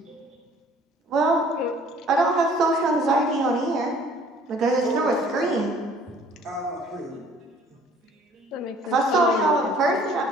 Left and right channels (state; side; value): normal; both; correlation 0.55